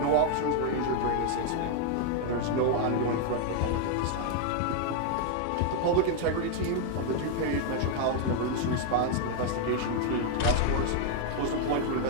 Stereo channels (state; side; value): different; both; correlation 0.00